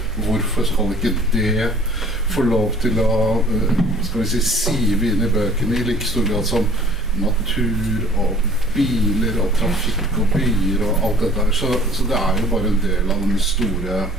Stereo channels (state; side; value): normal; both; correlation 0.51